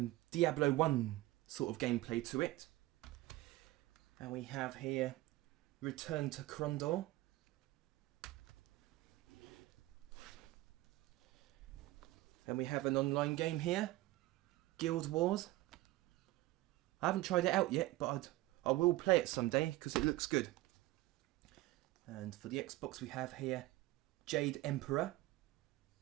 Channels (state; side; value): quieter; left; 18.0 dB